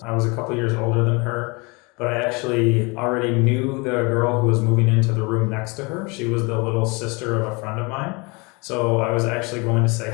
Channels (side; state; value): right; quieter; 28.2 dB